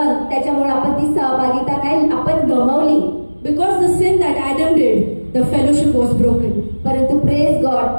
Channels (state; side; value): inverted; both; correlation -1.00